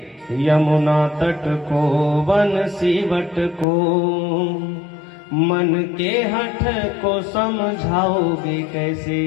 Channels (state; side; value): drops out; right; at 3.7 s